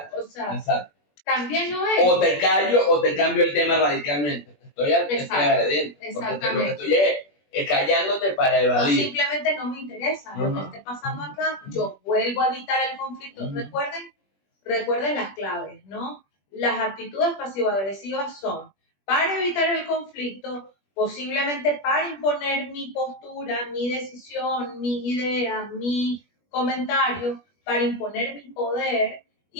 o sea, exacto. También lo es. O te callo o te cambio el tema radicalmente. Estoy agrediendo. Porque lo que estoy es callándote para evadir. O simplemente no me interesa lo que esté pasando acá. Yo vuelvo a evitar el conflicto. Recuerden las claves, ¿no? Las actitudes pasivo-agresivas son para evitar el conflicto, posiblemente para imponer mi postura, mi decisión, mi idea, mi comentario, para imponer mi poder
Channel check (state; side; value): late; right; 21 ms